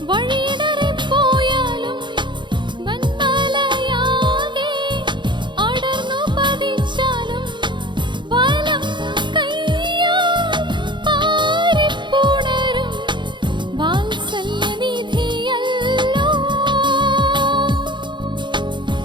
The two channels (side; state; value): left; late; 0.23 ms